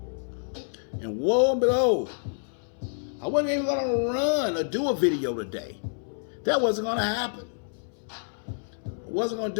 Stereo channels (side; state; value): right; silent; 59 dB below the other